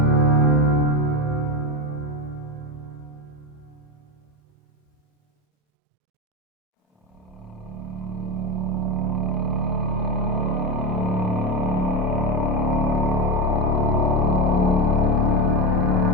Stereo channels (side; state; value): both; normal; correlation 0.15